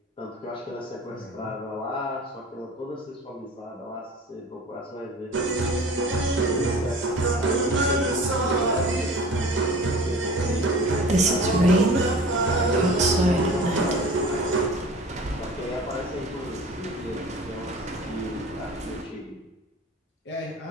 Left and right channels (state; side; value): normal; both; correlation 0.41